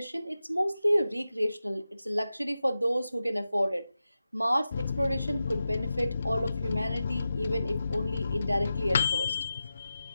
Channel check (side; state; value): both; inverted; correlation -0.92